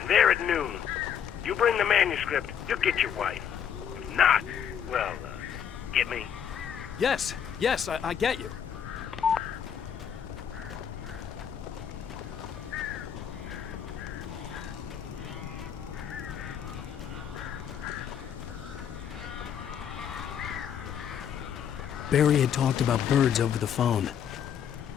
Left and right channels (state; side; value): quieter; right; 8.5 dB